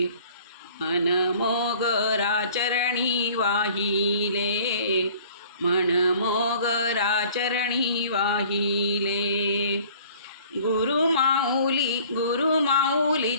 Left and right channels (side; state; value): both; inverted; correlation -0.51